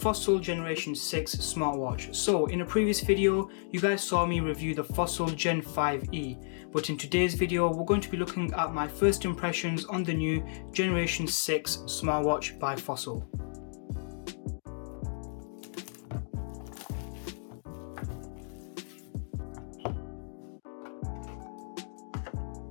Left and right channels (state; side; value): silent; right; digital silence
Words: Generation 6 smartwatch. So, in a previous video, you guys saw me review the Fossil Gen 5e, but in today's video, we're going to be looking at my first impressions on the new Generation 6 smartwatch by Fossil.